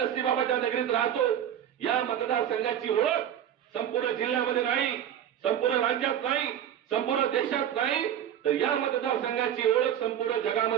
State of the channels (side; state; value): left; quieter; 10.1 dB